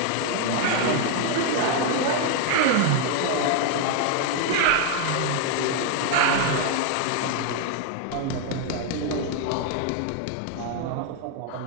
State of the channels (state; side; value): different; both; correlation 0.00